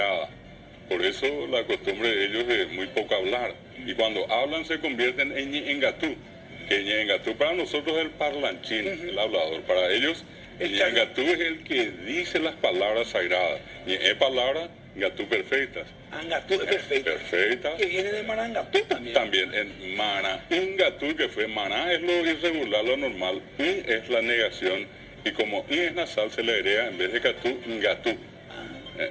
por eso la costumbre de ellos es muy poco hablar, y cuando hablan se convierten en Ñengatú, que Ñengatú para nosotros es el parlanchín, el hablador, para ellos Ñengatú es el que dice las palabras sagradas, es palabra Ngatú perfectas. Angatú es perfecta. Perfecta. Que viene de Marangatú también. También en Mana, Ingatú, que fue Maná, es lo irregular, lo normal. In es la negación. Y como In es nasal, se le agrega en vez de Catú, Ngatú.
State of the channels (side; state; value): both; identical; correlation 1.00